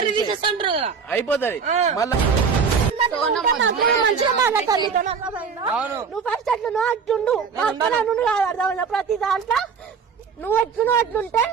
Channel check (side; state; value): left; quieter; 5.9 dB